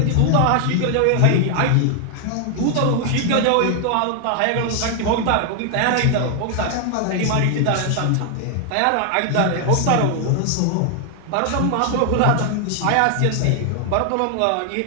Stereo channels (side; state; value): both; different; correlation 0.00